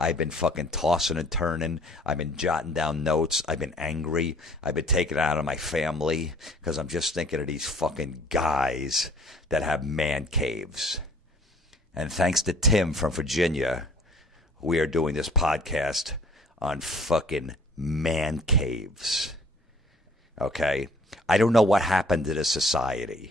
been fucking tossing and turning. I've been jotting down notes. I've been angry. I've been taking it out of my family because I'm just thinking of these fucking guys that have man caves. And thanks to Tim from Virginia, we are doing this podcast on fucking man caves. Okay? I don't know what happened to this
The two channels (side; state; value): both; normal; correlation 0.54